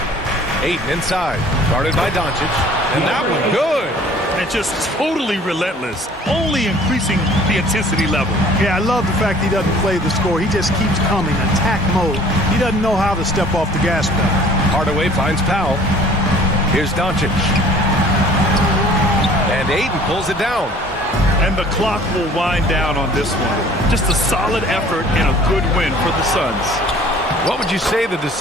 Ayton inside. Guarded by Doncic. And that one good. And just totally relentless, only increasing the intensity level. Yeah, I love the fact he doesn't play the score. He just keeps coming, attack mode. He doesn't know how to step off the gas pedal. Hardaway finds Powell. Here's Doncic. And Ayton pulls it down. And the clock will wind down on this one. Just a solid effort and a good win for the Suns. What would you say the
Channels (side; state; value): both; normal; correlation 0.51